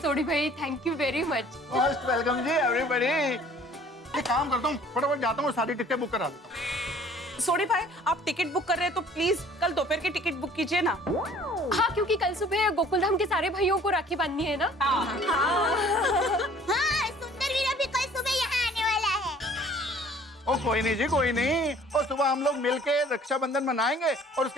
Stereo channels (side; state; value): both; normal; correlation 0.53